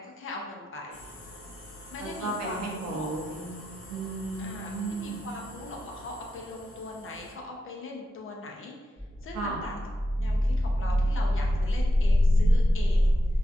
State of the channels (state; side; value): normal; both; correlation 0.88